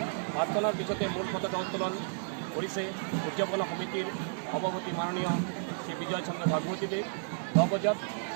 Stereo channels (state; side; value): silent; left; digital silence